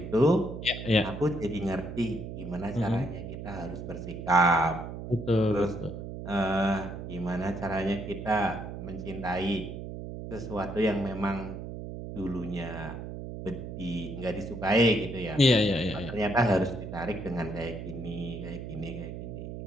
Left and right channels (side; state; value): right; noise; hum, 8 dB below the sound